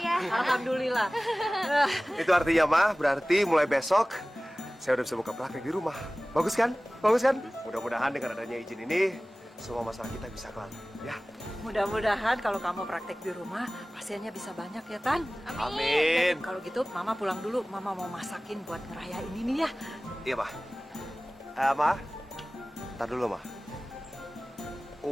Alhamdulillah. Itu artinya, Mah, berarti mulai besok saya udah bisa buka praktek di rumah. Bagus kan? Mudah-mudahan dengan adanya izin ini, semua masalah kita bisa kelar, ya. Mudah-mudahan kalau kamu praktek di rumah, pasiennya bisa banyak ya, Tan. Amin. Kalau gitu, Mama pulang dulu. Mama mau masakin buat ngerayain ini ya. Iya, Mah. Mah, tar dulu, Mah.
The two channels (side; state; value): both; normal; correlation 0.98